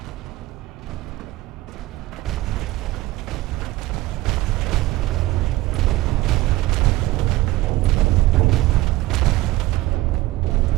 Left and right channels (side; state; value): left; quieter; 17.8 dB